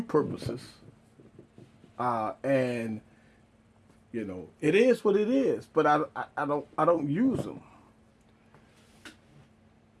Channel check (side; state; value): both; identical; correlation 1.00